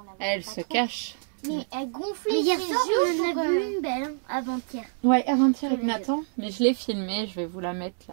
l'avait. Elle se cache. Mais elle gonflait. Mais hier soir, on en a vu une belle, hein, avant-hier. Ouais, avant-hier avec Nathan. Mais je l'ai filmée, je vais vous la mettre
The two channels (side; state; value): left; silent; 60 dB below the other